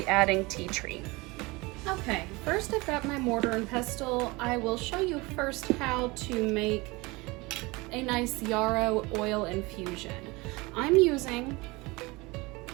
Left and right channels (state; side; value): quieter; left; 24.0 dB